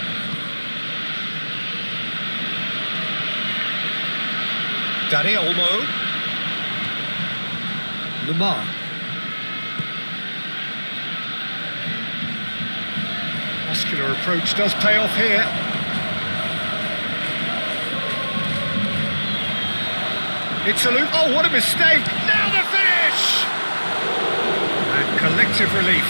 Dani Olmo. Lamar. Muscular approach does pay off here. It's a loop. Oh, what a mistake! Now the finish! And collective relief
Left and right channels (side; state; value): both; inverted; correlation -1.00